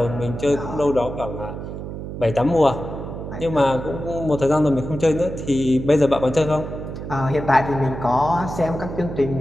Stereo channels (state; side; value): noise; right; hum, 8 dB below the sound